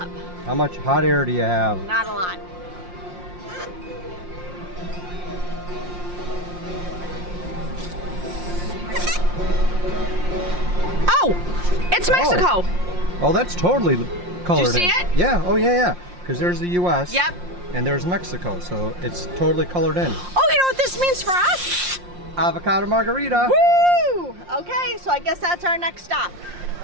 How much hot air do you have? Not a lot. Oh! It's Mexico! Oh, that's totally colored in. Did you see it? Yeah, oh yeah. Because there's the US. Yep. And there's Mexico, so it's totally colored in. Oh, you know what this means for us? Avocado margarita. Woo! Okay, so I guess that's our next stop.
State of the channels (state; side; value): late; left; 5.6 ms